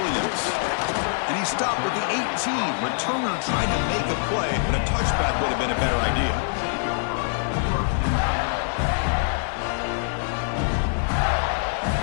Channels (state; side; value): silent; right; digital silence